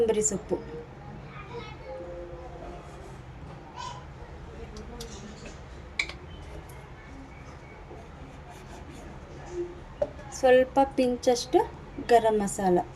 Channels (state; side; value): identical; both; correlation 1.00